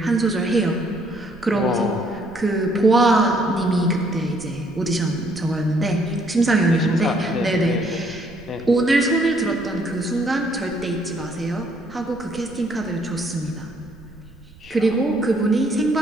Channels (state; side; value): noise; right; rumble, 22 dB below the sound